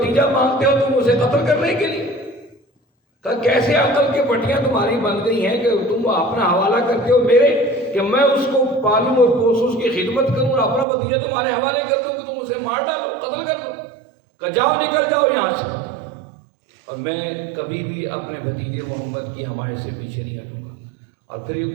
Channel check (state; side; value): drops out; left; at 10.9 s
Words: مانگتے ہو تم اسے قتل کرنے کے لیے؟ کہا کیسے عقل کی پٹیاں تمہاری بن گئی ہیں کہ تم اپنا حوالہ کرتے ہو میرے، کہ میں اس کو پالوں اور پوسوں، اس کی خدمت کروں اور اپنا بھتیجا تمہارے حوالے کر دوں کہ تم اسے مار ڈالو، قتل کر دو؟ کہ جاؤ، نکل جاؤ یہاں سے، اور میں کبھی بھی اپنے بھتیجے محمد کی حمایت سے پیچھے نہیں ہٹوں گا۔ اور پھر یہ